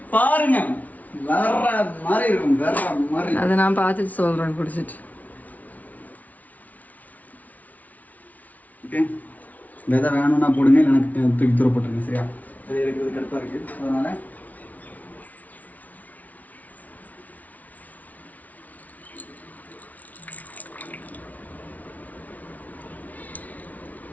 பாருங்க, வேற மாதிரி இருக்கும், வேற மாதிரி. அதை நான் பார்த்துட்டு சொல்றேன் குடிச்சிட்டு. ஓகே, விதை வேணும்னா போடுங்க, எனக்கு தூக்கி தூர போட்டுருங்க. சரியா? விதை எடுக்கிறது கரெக்டாக இருக்கு. அதனால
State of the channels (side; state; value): right; late; 0.073 ms